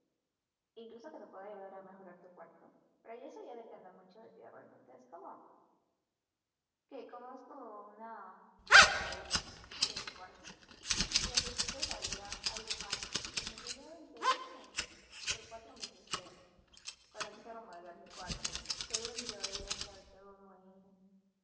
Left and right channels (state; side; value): identical; both; correlation 1.00